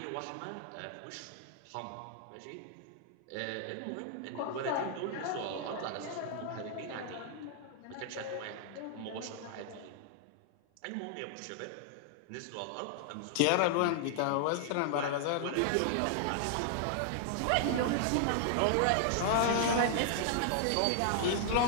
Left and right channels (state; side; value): different; both; correlation -0.01